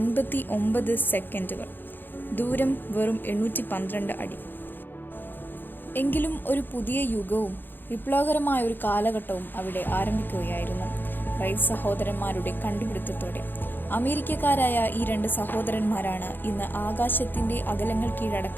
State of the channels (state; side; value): late; right; 0.094 ms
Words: സെക്കൻഡുകൾ. ദൂരം വെറും 812 അടി. എങ്കിലും ഒരു പുതിയ യുഗവും വിപ്ലവകരമായ ഒരു കാലഘട്ടവും അവിടെ ആരംഭിക്കുകയായിരുന്നു. റൈറ്റ് സഹോദരന്മാരുടെ കണ്ടുപിടുത്തത്തോടെ. അമേരിക്കക്കാരായ ഈ 2 സഹോദരന്മാരാണ് ഇന്ന് ആകാശത്തിന്റെ അകലങ്ങൾ